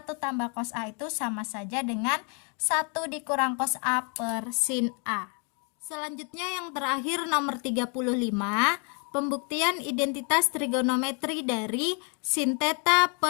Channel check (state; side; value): quieter; right; 37.6 dB